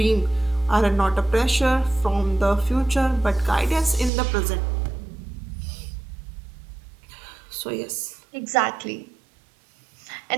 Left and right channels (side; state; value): left; drops out; at 4.1 s